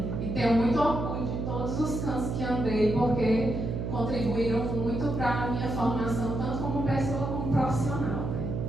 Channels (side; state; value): right; noise; hum, 3 dB below the sound